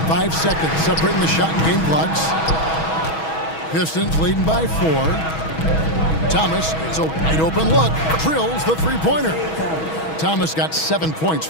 5 seconds separating the shot and game clocks. Pistons leading by 4. Thomas, it's a wide open look, drills the three-pointer. Thomas got 7 points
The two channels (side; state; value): right; late; 6.2 ms